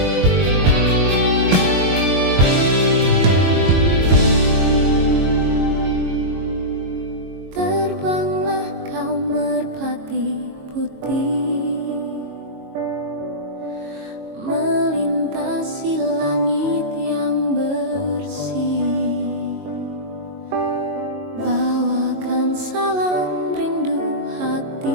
Terbanglah kau merpati putih, melintasi langit yang bersih. Bawakan salam rindu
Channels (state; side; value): late; left; 22 ms